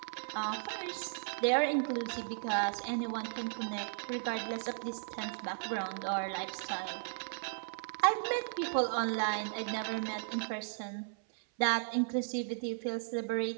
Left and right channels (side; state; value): left; silent; 54 dB below the other